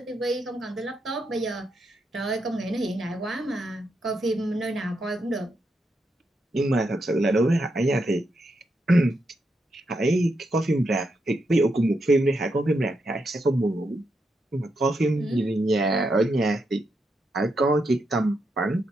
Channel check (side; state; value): both; normal; correlation 0.82